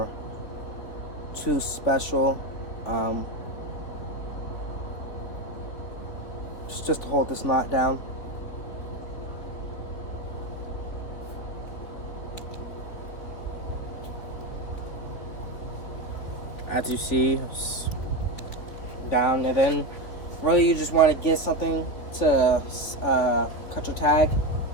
too special. Just to hold this knot down. As you see, it's down, and then really you just want to get something to cut your tag.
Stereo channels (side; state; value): right; late; 3.8 ms